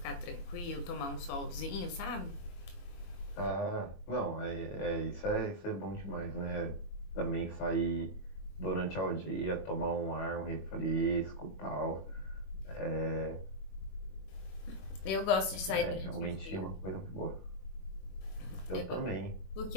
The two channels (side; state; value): right; late; 21 ms